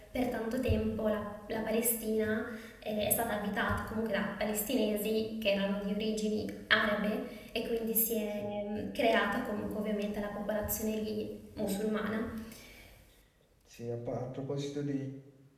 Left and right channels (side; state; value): both; identical; correlation 1.00